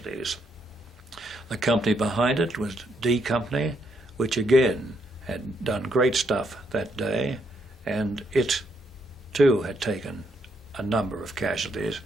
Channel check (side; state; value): both; normal; correlation 0.75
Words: The company behind it was D Company, which again had done great stuff that day, and it too had taken a number of casualties